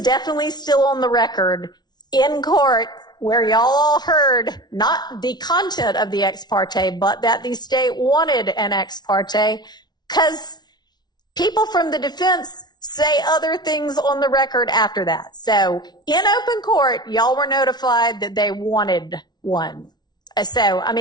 still on the record in court where y'all all heard not the content of the ex parte, but that the state wanted an ex parte because people from the defense say other things on the record after that. So in open court, y'all were notified that they wanted one. So, I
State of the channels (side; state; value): right; late; 0.20 ms